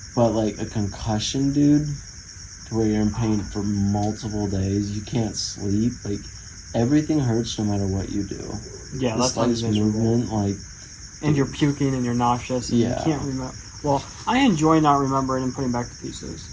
but like a concussion, dude, to where you're in pain for multiple days, you can't sleep. Like everything hurts no matter what you do. Yeah, the that's slightest movement, like. And you're puking and you're nauseous and you can't remember. Well, I enjoy not remembering and putting back the pieces.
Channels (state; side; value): identical; both; correlation 1.00